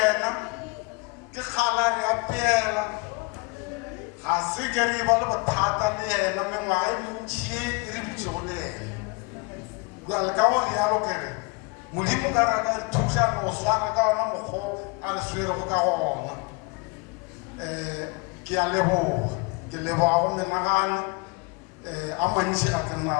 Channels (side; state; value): right; quieter; 29.0 dB